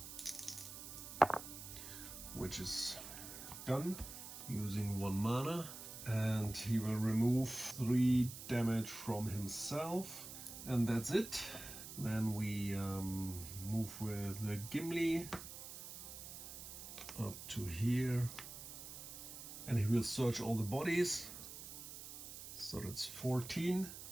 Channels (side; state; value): right; noise; hiss, 11 dB below the sound